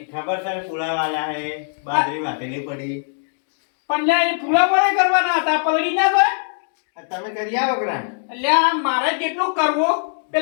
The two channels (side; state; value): right; silent; digital silence